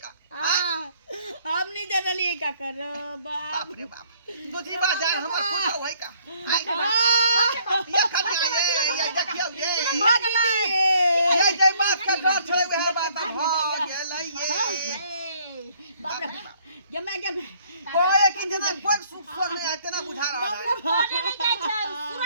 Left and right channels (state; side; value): inverted; both; correlation -0.63